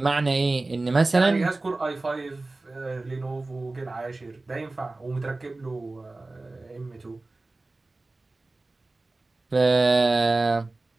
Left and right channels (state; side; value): quieter; left; 3.2 dB